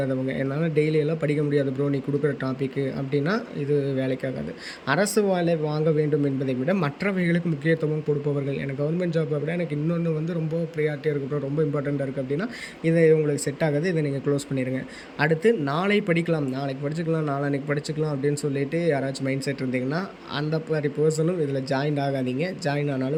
என்னால டெய்லி எல்லாம் படிக்க முடியாது ப்ரோ நீ குடுக்குற டாபிக்கு அப்படின்னா, இது வேலைக்காகாது. அரசு வேலை வாங்க வேண்டும் என்பதை விட மற்றவைகளுக்கு முக்கியத்துவம் கொடுப்பவர்கள், எனக்கு கவர்மெண்ட் ஜாப்பை விட எனக்கு இன்னொன்று வந்து ரொம்ப ப்ரியாரிட்டியாக இருக்குது ப்ரோ, ரொம்ப இம்பார்ட்டண்ட்டாக இருக்குது அப்படின்னா, இது உங்களுக்கு செட் ஆகாது. இதை நீங்கள் க்ளோஸ் பண்ணிடுங்க. அடுத்து நாளை படிக்கலாம், நாளைக்கு படிச்சுக்கலாம், நாளான்னைக்கு படிச்சுக்கலாம் அப்படின்னு சொல்லிட்டு யாராச்சும் மைண்ட் செட் இருந்தீங்கன்னா, அந்த மாதிரி பர்சனும் இதில் ஜாயின் ஆகாதீங்க. ஜாயின்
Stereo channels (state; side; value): identical; both; correlation 1.00